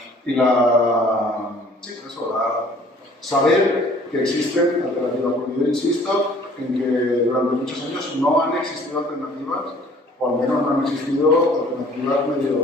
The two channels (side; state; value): both; normal; correlation 0.54